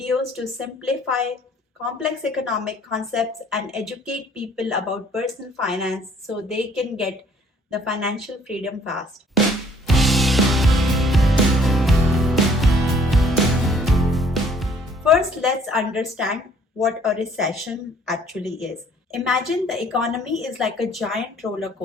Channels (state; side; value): normal; both; correlation 0.59